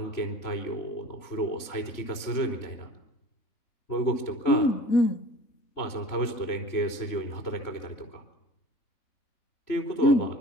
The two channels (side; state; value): right; late; 3.1 ms